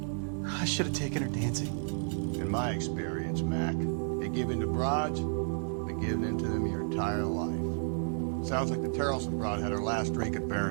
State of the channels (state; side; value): silent; left; 57 dB below the other